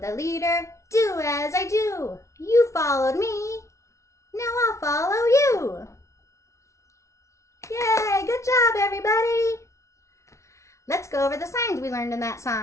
leader, do as I do. You followed me, now I'll follow you. Yay, good job everybody. Let's go over the signs we learned in that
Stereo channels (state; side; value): late; right; 0.14 ms